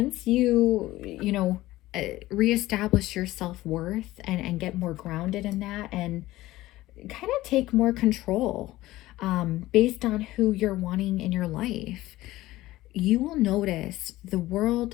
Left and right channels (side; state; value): right; quieter; 17.0 dB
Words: you reestablish your self-worth and get more grounded in that, and kind of take more control based on who you're wanting in your life, you will notice the